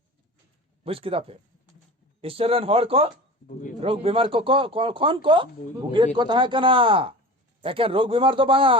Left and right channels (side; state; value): both; normal; correlation 0.34